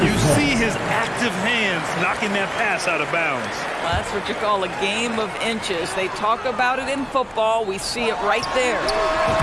You see his active hands knocking that pass out of bounds. Well, that's what you call a game of inches. They talk about it in football. We see it right there.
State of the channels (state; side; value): identical; both; correlation 1.00